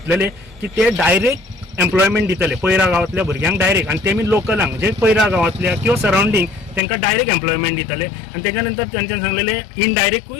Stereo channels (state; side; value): drops out; right; at 6.8 s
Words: की ते डायरेक्ट एम्प्लॉयमेंट दितले पयरा गांवांतल्या भुरग्यांक डायरेक्ट, आनी तेमी लोकलांक म्हणजे पयरा गांवांतल्या किंवा सरावंडींग तांकां डायरेक्ट एम्प्लॉयमेंट दितले. आनी तेच्या नंतर तेंच्यांनी सांगलेले